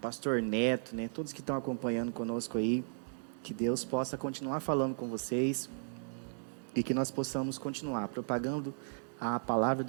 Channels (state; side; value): silent; left; digital silence